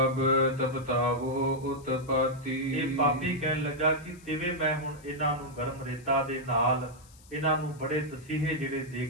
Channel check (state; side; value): noise; left; hiss, 25 dB below the sound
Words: ਤਪਤਾਵੋ ਉਤਪਾਤੀ। ਇਹ ਪਾਪੀ ਕਹਿਣ ਲੱਗਾ ਕਿ ਤਿਵੇਂ ਮੈਂ ਹੁਣ ਇਹਨਾਂ ਨੂੰ ਗਰਮ ਰੇਤਾ ਦੇ ਨਾਲ ਇਹਨਾਂ ਨੂੰ ਬੜੇ ਤਸੀਹੇ ਜਿਹੜੇ ਦੇ